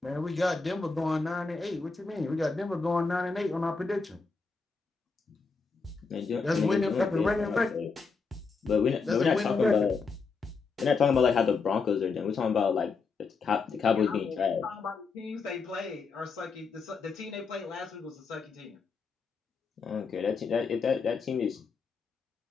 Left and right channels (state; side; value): quieter; right; 4.7 dB